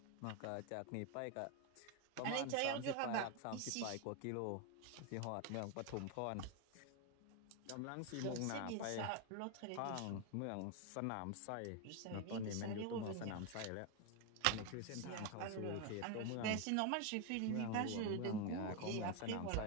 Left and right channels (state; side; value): different; both; correlation 0.01